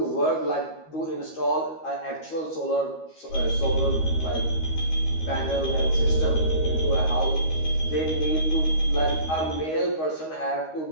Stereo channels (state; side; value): late; right; 13 ms